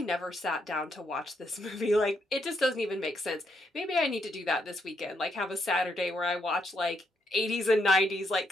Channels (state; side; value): normal; both; correlation 0.77